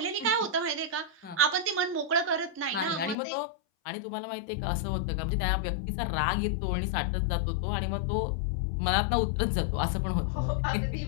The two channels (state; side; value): drops out; right; at 3.2 s